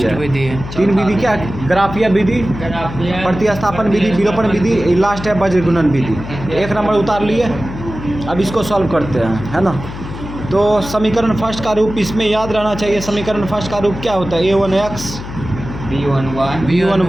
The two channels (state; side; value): noise; left; hum, 10 dB below the sound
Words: है। 3 विधि क्या, ग्राफीय विधि, प्रतिस्थापन विधि, विलोपन विधि, लास्ट है वज्र गुणन विधि। 1 नंबर उतार लिए, अब इसको सॉल्व करते हैं, है ना। तो समीकरण फर्स्ट का रूप इसमें याद रहना चाहिए। समीकरण फर्स्ट का रूप क्या होता है, a1x